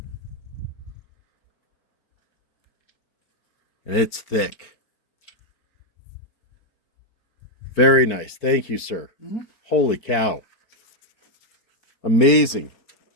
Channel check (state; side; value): late; right; 4.4 ms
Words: And it's thick. Very nice. Thank you, sir. Mm-hmm. Holy cow. Amazing.